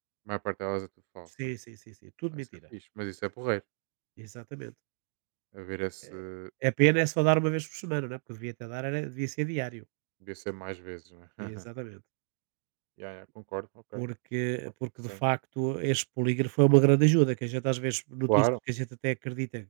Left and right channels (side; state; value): left; silent; 57 dB below the other